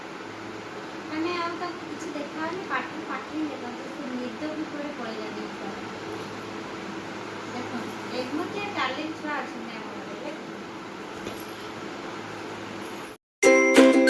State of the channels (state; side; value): identical; both; correlation 1.00